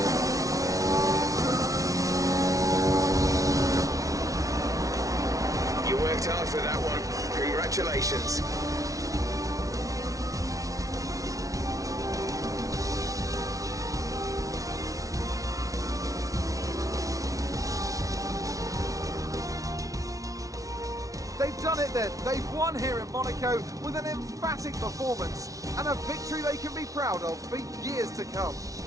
You worked hard for that one. Congratulations. They've done it then. They've won here in Monaco with an emphatic performance and a victory they can be proud of for years to come.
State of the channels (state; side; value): late; left; 0.17 ms